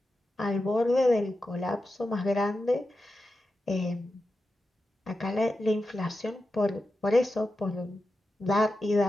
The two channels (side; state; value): both; normal; correlation 0.90